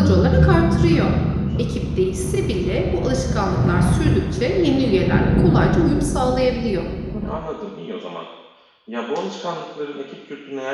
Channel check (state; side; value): identical; both; correlation 1.00